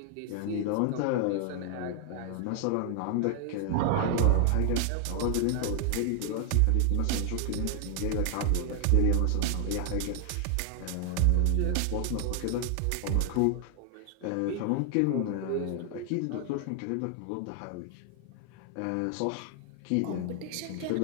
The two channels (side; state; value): both; different; correlation 0.00